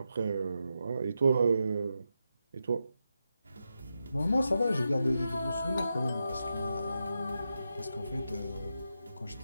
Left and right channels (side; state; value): both; inverted; correlation -0.87